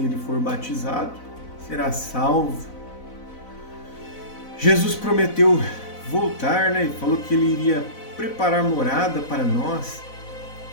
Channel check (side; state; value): right; late; 4.0 ms